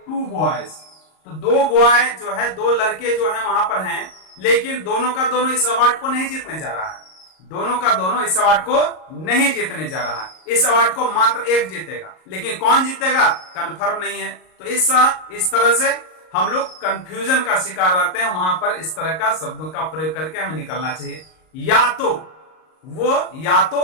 टू बॉयज, तो दो बॉय जो है, दो लड़के जो है वहां पर हैं, लेकिन दोनों का दोनों इस अवार्ड को नहीं जीतने जा रहा है। दोनों का दोनों इस अवार्ड को नहीं जीतने जा रहा है। इस अवार्ड को मात्र एक जीतेगा, लेकिन कौन जीतेगा कंफर्म नहीं है। तो इस तरह से हम लोग कंफ्यूजन का शिकार रहते हैं। वहां पर इस तरह का शब्दों का प्रयोग करके हमें निकलना चाहिए। या तो वो, या तो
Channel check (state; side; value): late; right; 38 ms